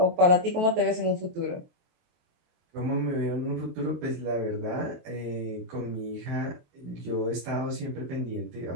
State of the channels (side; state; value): left; late; 23 ms